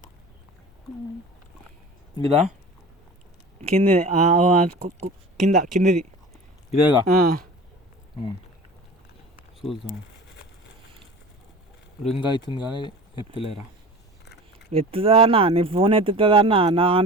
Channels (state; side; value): normal; both; correlation 0.37